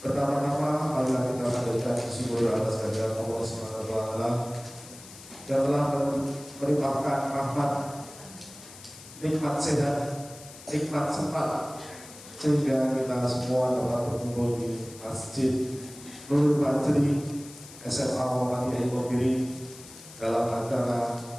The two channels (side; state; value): left; noise; hiss, 17 dB below the sound